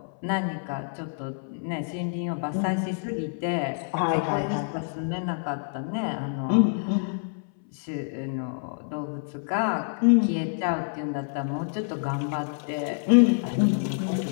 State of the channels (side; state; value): right; silent; 60 dB below the other